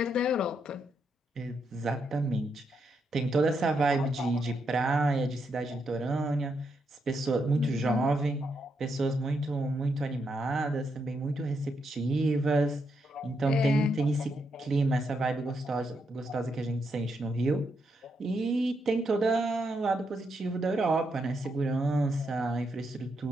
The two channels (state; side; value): normal; both; correlation 0.80